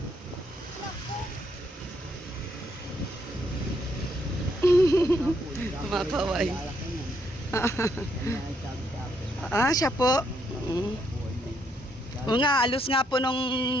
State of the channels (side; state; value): both; normal; correlation 0.74